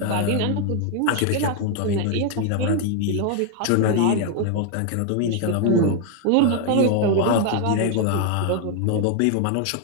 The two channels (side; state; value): both; different; correlation 0.00